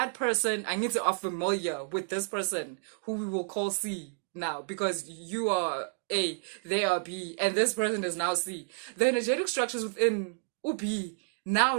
person, I need to are familiar with this person who we will call C now, because you are A, they are B, and this person is now C. The energetic structures within B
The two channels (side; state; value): left; silent; digital silence